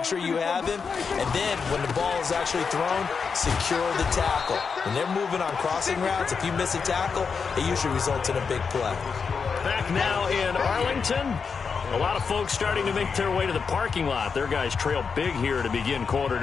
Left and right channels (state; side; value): quieter; right; 5.6 dB